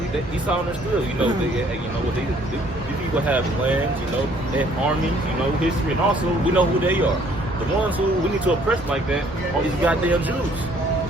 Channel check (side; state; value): both; normal; correlation 0.61